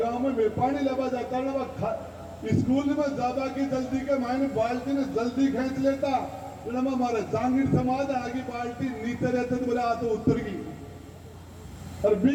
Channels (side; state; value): both; identical; correlation 1.00